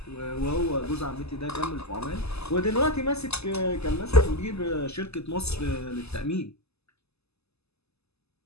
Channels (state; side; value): late; right; 0.79 ms